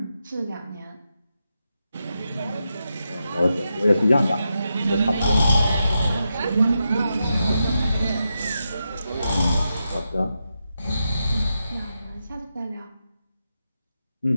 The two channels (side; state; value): both; inverted; correlation -0.87